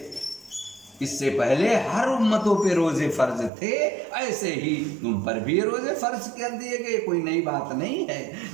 इससे पहले हर उम्मतों पे रोज़े फ़र्ज थे, ऐसे ही तुम पर भी रोज़े फ़र्ज कर दिए गए। कोई नई बात नहीं है।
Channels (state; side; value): drops out; left; at 3.5 s